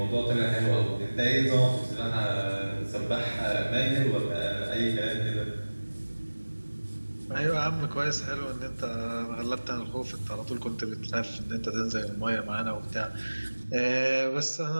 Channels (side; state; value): both; inverted; correlation -1.00